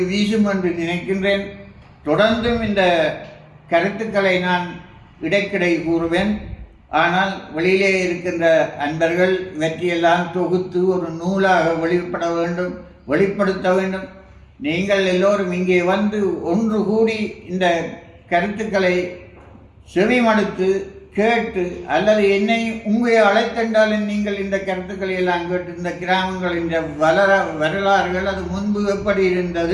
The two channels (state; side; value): identical; both; correlation 1.00